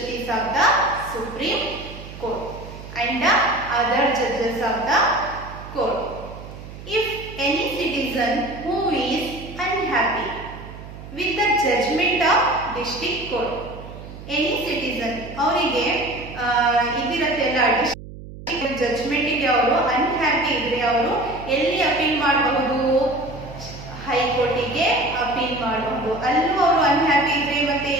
of the Supreme Court and the other judges of the court. If any citizen who is unhappy with the judgment of district court, any citizen ಅವರಿಗೆ ಇದಿರತ್ತೆಲ್ಲ judgment ಗೆ ಅವರು unhappy ಇದ್ರೆ ಅವರು ಎಲ್ಲಿ appeal ಮಾಡಬಹುದು, ಹೈಕೋರ್ಟಿಗೆ appeal ಮಾಡಬಹುದು. ಅಲ್ಲೂ ಅವರು ಅನ್ಹ್ಯಾಪಿ ಇದ್ರೆ ಮತ್ತೆ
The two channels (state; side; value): noise; right; hum, 14 dB below the sound